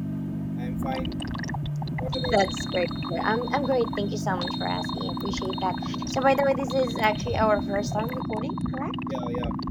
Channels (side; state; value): both; identical; correlation 1.00